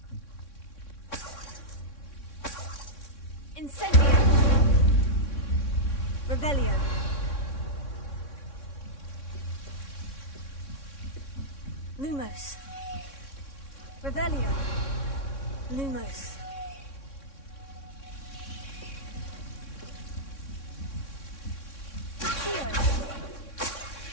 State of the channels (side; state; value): right; late; 3.6 ms